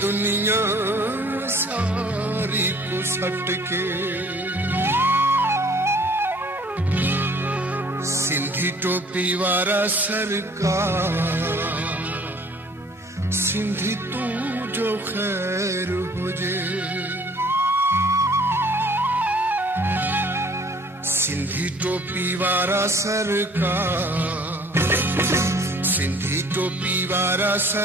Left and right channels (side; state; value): both; normal; correlation 0.54